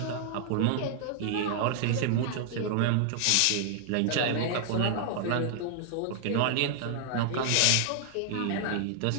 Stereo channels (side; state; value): both; different; correlation 0.00